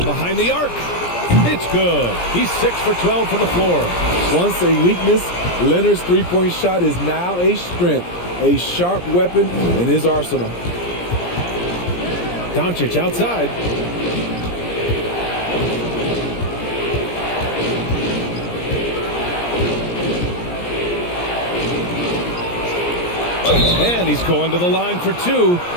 behind the arc. It's good. He's 6 for 12 from the floor. Once a weakness, Leonard's three-point shot is now a strength, a sharp weapon in his arsenal. Doncic outside. And he's going to the line for 2.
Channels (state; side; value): late; right; 17 ms